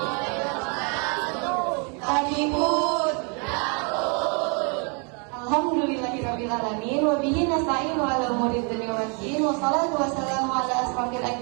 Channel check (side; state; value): left; quieter; 36.1 dB